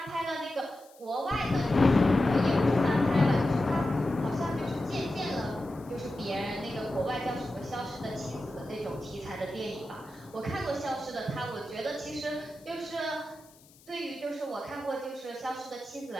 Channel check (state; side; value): noise; left; hiss, 27 dB below the sound